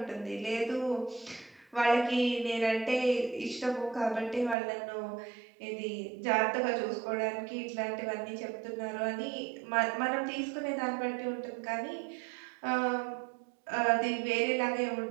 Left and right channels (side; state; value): left; drops out; at 4.5 s